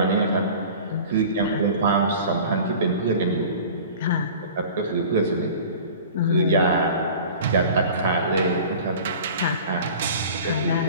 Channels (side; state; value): both; inverted; correlation -0.41